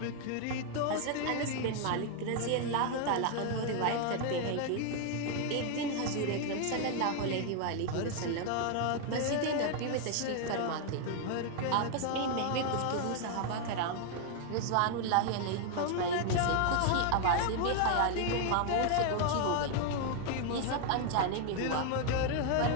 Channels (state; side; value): different; both; correlation 0.00